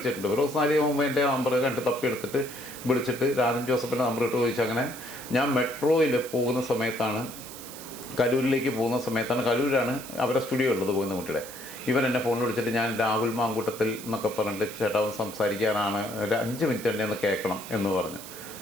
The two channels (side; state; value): right; noise; hiss, 13 dB below the sound